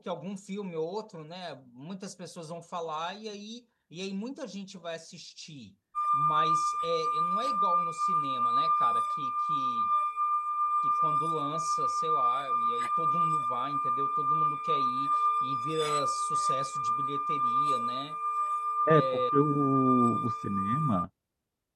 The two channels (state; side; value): identical; both; correlation 1.00